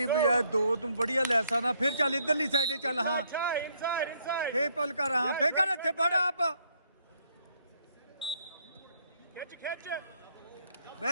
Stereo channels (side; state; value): both; inverted; correlation -0.70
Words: बजाय दो तुम बढ़िया ले सकना फिर चल इधरली साइड चल हाँ फे पल कर हाँ फे कर इत्थे बड़ा आप